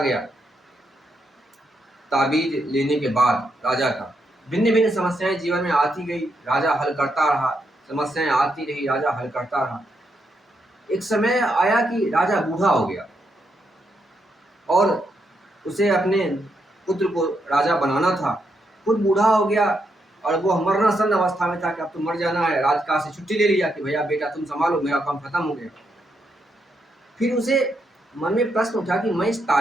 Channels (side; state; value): both; normal; correlation 0.80